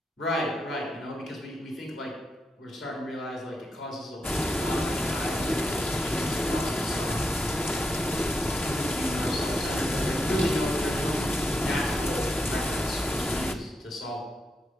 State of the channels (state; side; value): normal; both; correlation 0.84